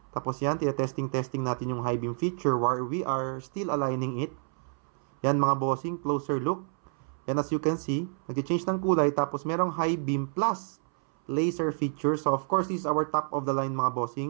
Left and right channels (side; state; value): left; silent; 59 dB below the other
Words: Tapos yan, testing natin yung high beam feature where we are still aligning it. Yan mga bossing, closer look. Yan as you can see, nag-change ng kulay tapos merong high beam plus laser feature. So of course, this is our top of the line mga